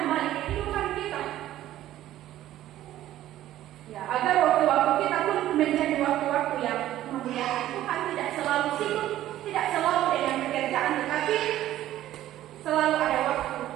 kehidupan kita, ya agar waktu-waktu kita pun menjadi waktu-waktu yang memuliakan Tuhan. Tidak selalu sibuk, tidak selalu dengan pekerjaan, tetapi selalu ada waktu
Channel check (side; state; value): left; quieter; 13.5 dB